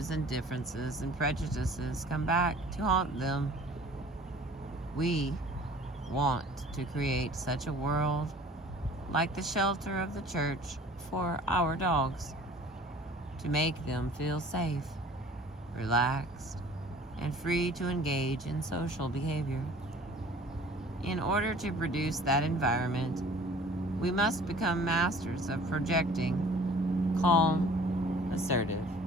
and differences and prejudices come back to haunt them. We want to create such a world like the shelter of the church for our dogs, to make them feel safe, relaxed, and free to engage in social behavior. In order to produce that environment, we must become masters of projecting calm, assertive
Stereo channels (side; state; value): both; normal; correlation 0.49